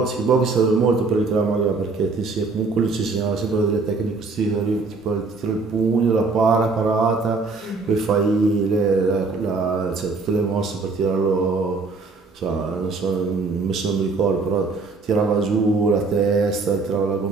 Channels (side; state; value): left; quieter; 4.0 dB